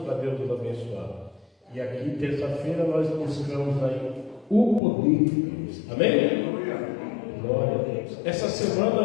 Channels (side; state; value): right; drops out; at 4.8 s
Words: para Deus nos abençoar. E aqui, terça-feira, nós buscamos aí o poder de Deus. Amém? Glória a Deus. Essa